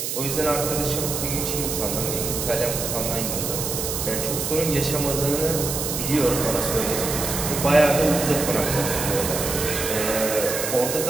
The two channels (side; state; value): right; noise; hiss, 3 dB below the sound